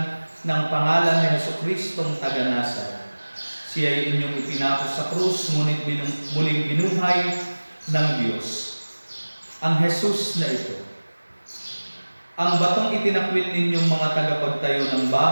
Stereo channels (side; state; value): both; inverted; correlation -1.00